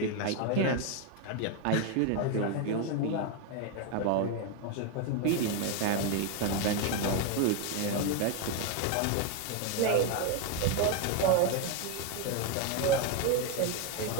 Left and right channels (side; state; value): both; different; correlation 0.02